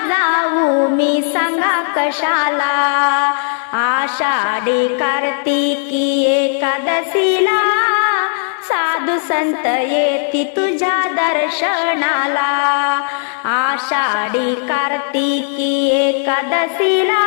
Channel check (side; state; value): right; silent; 69 dB below the other